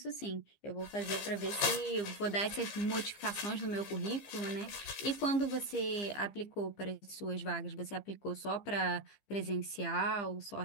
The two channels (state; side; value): late; right; 15 ms